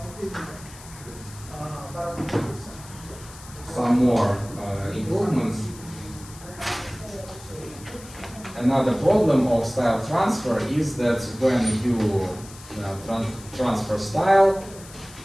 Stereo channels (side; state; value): left; noise; hiss, 18 dB below the sound